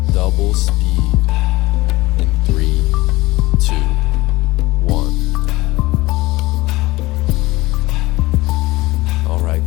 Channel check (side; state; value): right; quieter; 20.0 dB